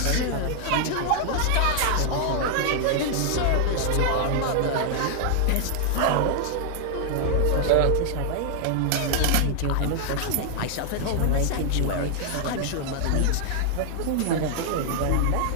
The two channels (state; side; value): different; both; correlation 0.00